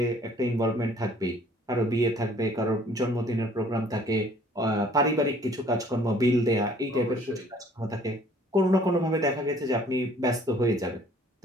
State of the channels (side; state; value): both; normal; correlation 0.56